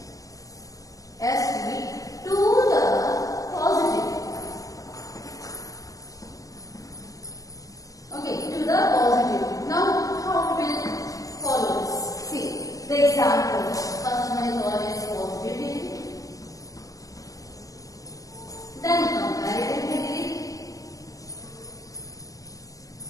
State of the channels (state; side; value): late; right; 0.17 ms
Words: ST to the positive. Okay, to the positive. Now, how we will follow this? See the example. First one is always positive degree, then comparative degree,